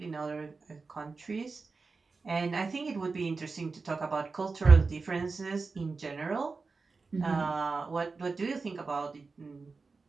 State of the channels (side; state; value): left; quieter; 4.2 dB